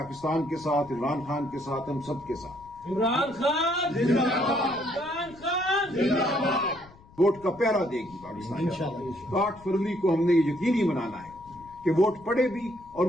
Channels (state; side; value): noise; left; rumble, 23 dB below the sound